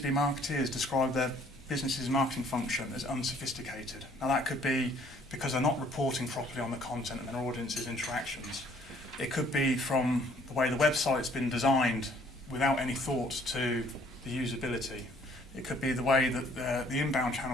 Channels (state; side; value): noise; left; rumble, 22 dB below the sound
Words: marketeers describe their business's marketing function as unsophisticated. Now that could be because they're not reporting properly on the content and their audience's interactions. It could be from the way the website's been designed without any thought to the usability. It could be the way that the inbound